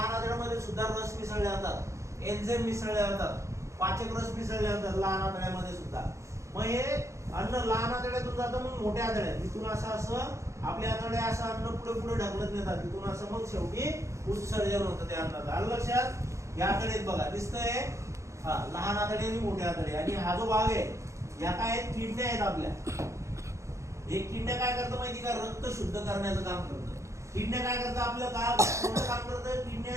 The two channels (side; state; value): left; late; 0.14 ms